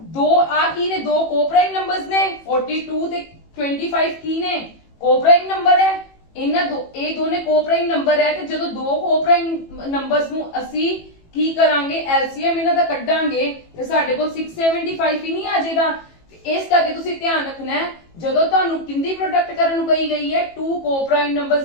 ਆ ਕੀ ਨੇ, ਦੋ ਕੋਪ੍ਰਾਈਮ ਨੰਬਰਸ ਨੇ, 42 ਤੇ 25 ਕੀ ਨੇ, ਕੋਪ੍ਰਾਈਮ ਨੰਬਰ ਹੈ। ਇਹ ਦੋਨੇ ਕੋਪ੍ਰਾਈਮ ਨੰਬਰ ਹੈ, ਤੇ ਜਦੋਂ ਦੋ ਕੋਪ੍ਰਾਈਮ ਨੰਬਰਸ ਨੂੰ ਅਸੀਂ ਕੀ ਕਰਾਂਗੇ, LCM ਇਹਨਾਂ ਦਾ ਕੱਢਾਂਗੇ ਤੇ ਸਾਡੇ ਕੋਲ 675 ਹੀ ਨਹੀਂ ਆ ਜਾਏਗਾ। ਇਸ ਕਰਕੇ ਤੁਸੀਂ ਧਿਆਨ ਰੱਖਣਾ ਹੈ, ਜਦੋਂ ਤੁਹਾਨੂੰ ਕਿੰਦੀ ਪ੍ਰੋਡਕਟ ਕਰਨ ਨੂੰ ਕਹੀ ਗਈ ਹੈ, to coprime numbers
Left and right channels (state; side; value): late; right; 18 ms